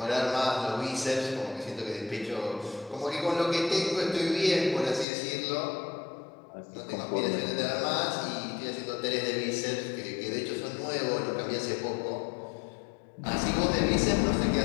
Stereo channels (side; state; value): right; drops out; at 5.1 s